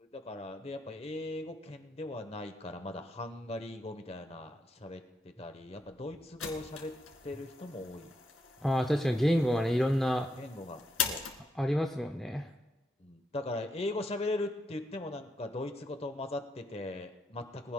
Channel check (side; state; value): both; normal; correlation 0.79